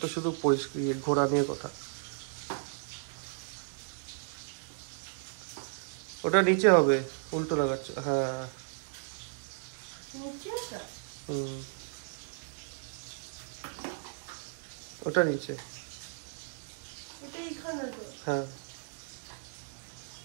তো শুধু পরিষ্কার ঘোরা নিয়ে কথা। ওটা নিচে হবে, উল্টো লাগাচ্ছ। হ্যাঁ ওটা নিচে, হ্যাঁ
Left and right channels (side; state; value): left; silent; digital silence